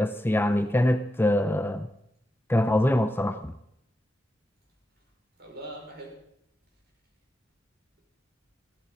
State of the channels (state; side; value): normal; both; correlation 0.88